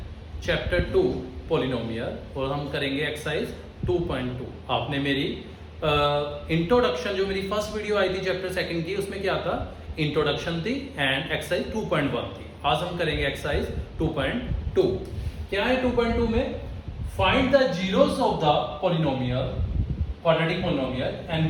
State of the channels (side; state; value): both; identical; correlation 1.00